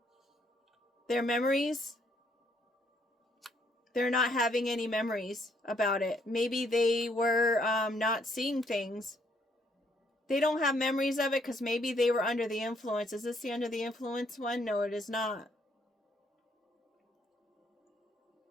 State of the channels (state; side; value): normal; both; correlation 0.69